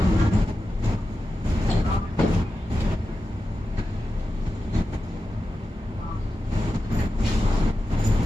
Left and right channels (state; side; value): normal; both; correlation 0.91